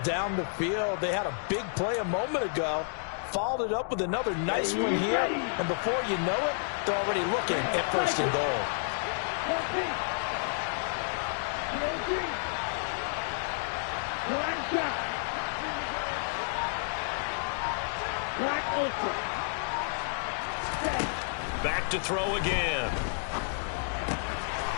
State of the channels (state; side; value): silent; right; digital silence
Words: down the field? They had a big play a moment ago, followed it up with another nice one here, and before you know it, they're already looking at first and goal. Back to throw again.